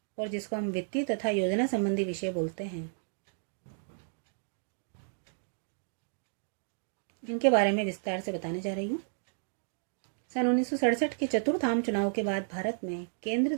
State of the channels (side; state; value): left; silent; digital silence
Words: और जिसको हम वित्तीय तथा योजना संबंधी विषय बोलते हैं, इनके बारे में विस्तार से बताने जा रही हूँ। सन 1967 के चतुर्थ आम चुनाव के बाद भारत में केंद्र